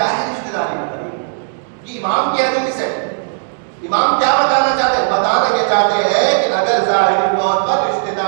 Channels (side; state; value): left; silent; digital silence